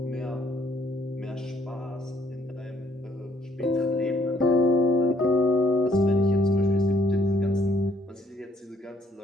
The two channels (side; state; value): both; normal; correlation 0.66